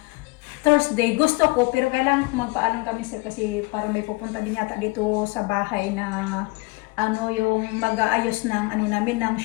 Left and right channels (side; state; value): right; quieter; 25.8 dB